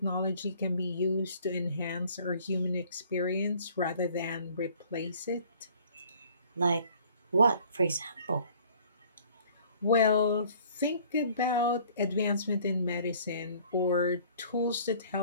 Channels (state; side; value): inverted; both; correlation -0.54